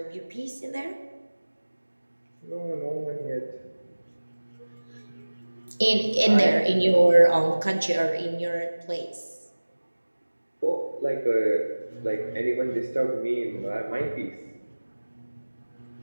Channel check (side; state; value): both; inverted; correlation -1.00